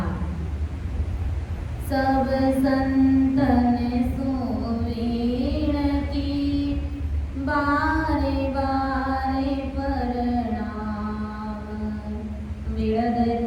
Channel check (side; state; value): both; identical; correlation 1.00